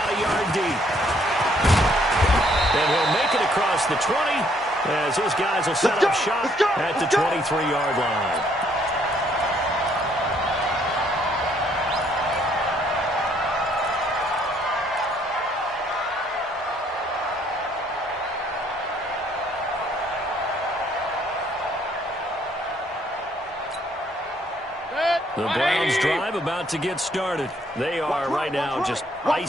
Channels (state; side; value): normal; both; correlation 0.66